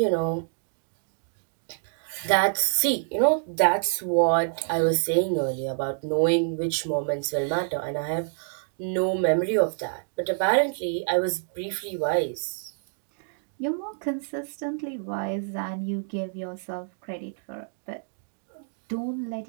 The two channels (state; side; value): silent; left; digital silence